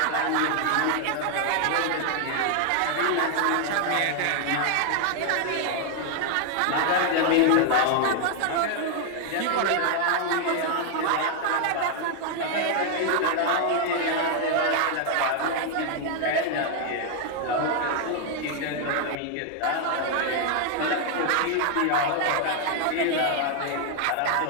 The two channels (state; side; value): different; both; correlation 0.00